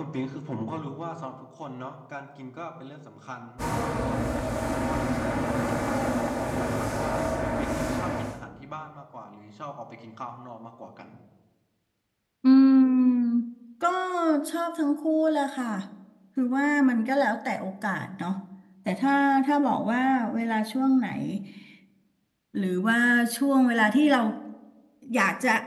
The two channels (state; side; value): identical; both; correlation 1.00